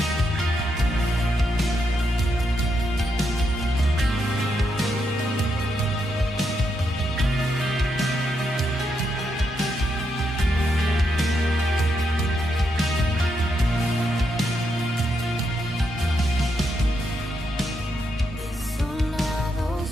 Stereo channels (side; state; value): both; normal; correlation 0.81